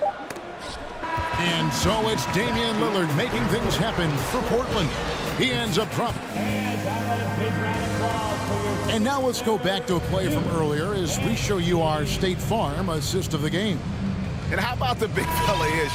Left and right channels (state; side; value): identical; both; correlation 1.00